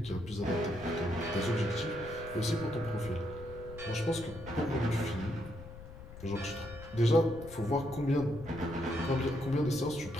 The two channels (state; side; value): noise; left; rumble, 15 dB below the sound